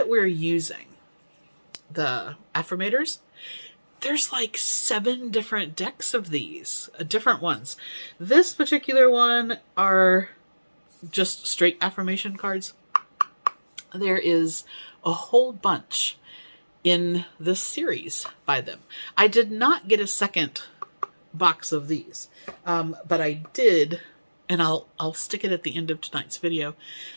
we're using, the affirmators, there's like 7 different decks of these, different ones. This particular one are just straight affirmation cards. There is a whole bunch in this series by them. I did not get a second box of these, but I did, and I'll stick it at the end of tonight's video.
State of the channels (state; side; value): inverted; both; correlation -1.00